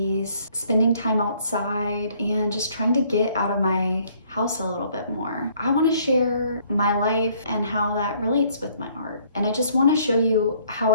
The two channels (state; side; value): inverted; both; correlation -0.63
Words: spending time outside, and just trying to get out of my house a little bit more. I want to share my life and how that relates with my art. And I just want to show you how